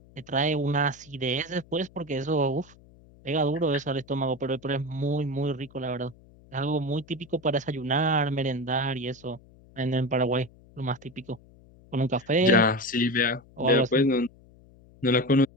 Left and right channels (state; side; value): noise; left; hum, 25 dB below the sound